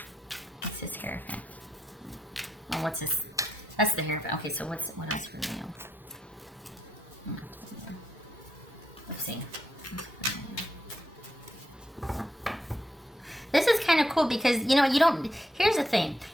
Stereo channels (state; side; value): normal; both; correlation 0.81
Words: What's this Hierophant? Oh, what's this? That's the Hierophant. Okay, so what else for Leo? Let's see. This is kind of cool because, here's the thing.